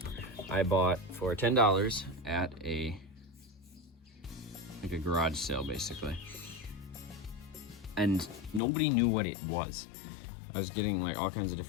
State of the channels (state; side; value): drops out; right; at 8.6 s